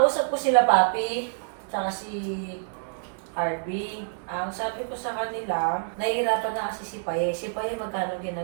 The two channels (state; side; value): silent; left; 60 dB below the other